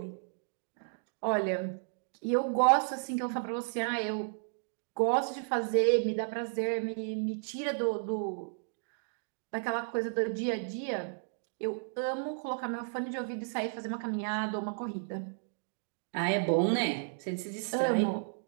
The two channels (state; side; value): silent; left; digital silence